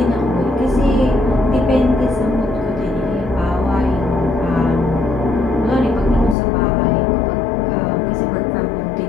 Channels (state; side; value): drops out; right; at 6.4 s